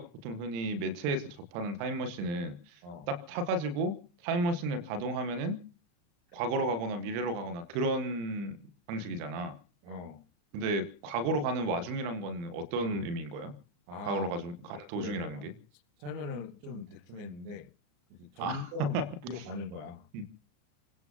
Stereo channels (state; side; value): late; left; 35 ms